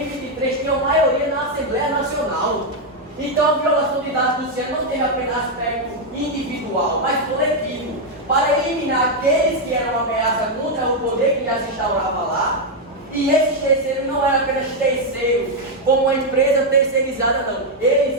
Então a violação de dados do Luciano não teve apenas aspecto individual, mas coletivo, para eliminar aqueles que eram uma ameaça contra o poder que já se instaurava lá. E esses terceiros não eram apenas terceiros, como uma empresa terceirizada, não. Eles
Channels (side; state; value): both; normal; correlation 0.01